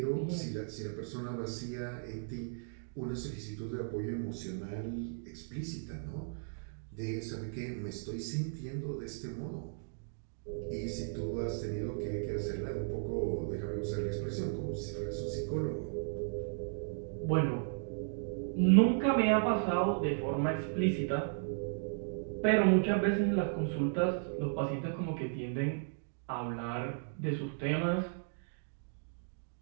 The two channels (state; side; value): silent; left; digital silence